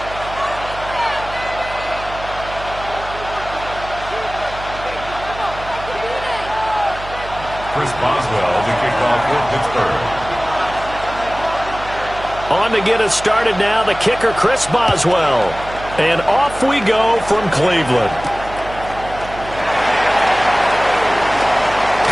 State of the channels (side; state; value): right; noise; hum, 13 dB below the sound